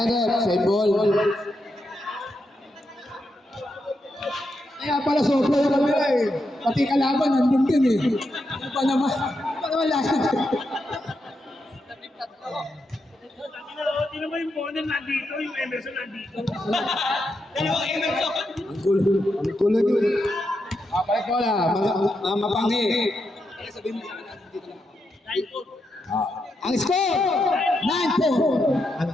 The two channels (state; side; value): normal; both; correlation 0.84